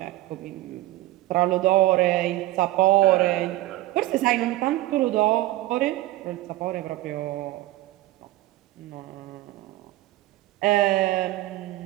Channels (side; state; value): left; quieter; 17.0 dB